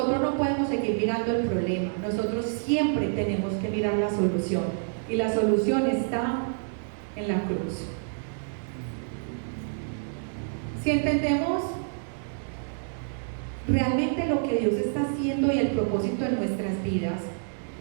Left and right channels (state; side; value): silent; left; digital silence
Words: no podemos seguir mirando el problema, nosotros siempre tenemos que mirar la solución y la solución está en la cruz. Si entendemos realmente lo que Dios está haciendo y el propósito en nuestras vidas,